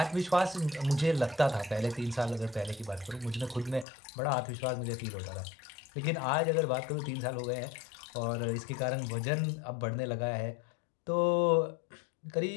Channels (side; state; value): right; drops out; at 3.9 s